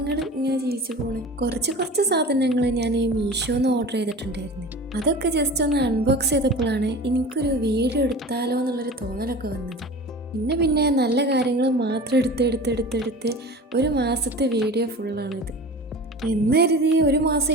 ഇങ്ങനെ ജീവിച്ചു പോണ്. കുറച്ച് സാധനങ്ങൾ ഞാൻ മീഷോന്ന് ഓർഡർ ചെയ്തിട്ടുണ്ടായിരുന്നു. അതൊക്കെ ജസ്റ്റ് ഒന്ന് അൺബോക്സ് ചെയ്തപ്പോഴാണ് എനിക്കൊരു വീഡിയോ എടുത്താലോ എന്നുള്ളൊരു തോന്നലൊക്കെ വന്നത്. പിന്നെ നല്ല കാര്യങ്ങൾ മാത്രം എടുത്ത് ഒരു മാസത്തെ വീഡിയോ ഫുള്ളാണിത്. എന്ന് കരുതി ഒരു മാസം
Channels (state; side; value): normal; both; correlation 0.36